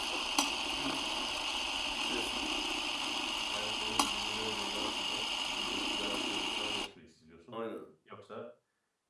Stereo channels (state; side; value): identical; both; correlation 1.00